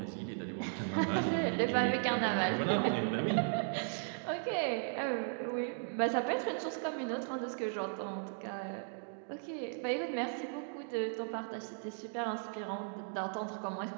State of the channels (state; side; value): silent; left; digital silence